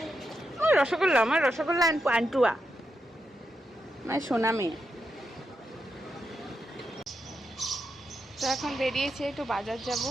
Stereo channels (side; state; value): both; normal; correlation 0.85